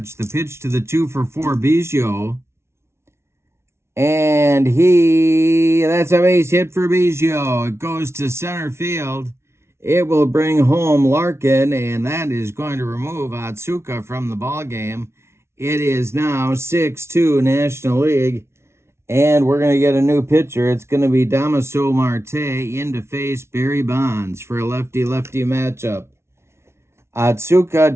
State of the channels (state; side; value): late; left; 0.13 ms